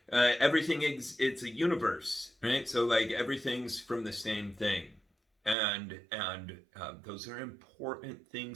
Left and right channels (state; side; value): drops out; left; at 5.6 s